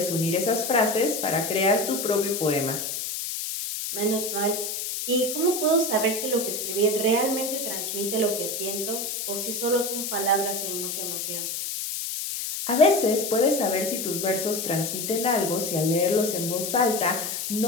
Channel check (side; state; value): left; noise; hiss, 4 dB below the sound